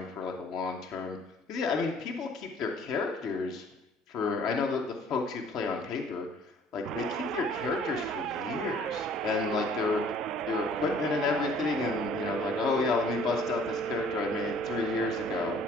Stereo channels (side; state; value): both; normal; correlation 0.55